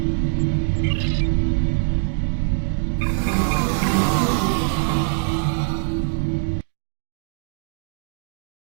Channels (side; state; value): left; silent; digital silence